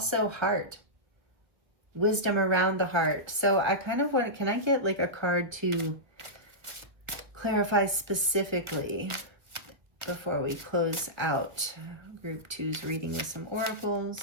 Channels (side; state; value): left; late; 1.3 ms